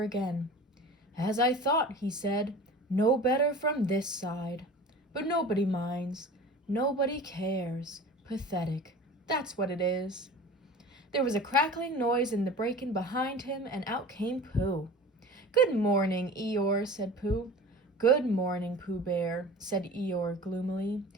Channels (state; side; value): normal; both; correlation 0.38